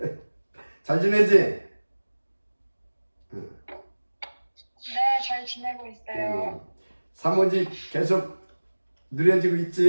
잘 지내지? 네, 잘 지내고 있어요. 사모직 계속 누려지고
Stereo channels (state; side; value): inverted; both; correlation -1.00